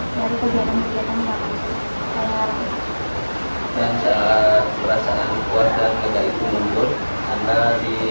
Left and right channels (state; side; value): inverted; both; correlation -1.00